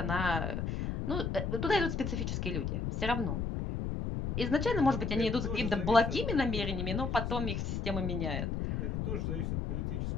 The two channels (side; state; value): left; noise; rumble, 1 dB below the sound